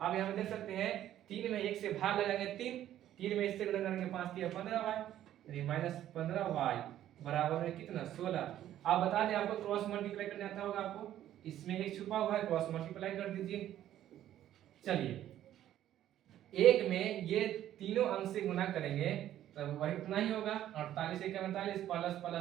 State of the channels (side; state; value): left; quieter; 12.1 dB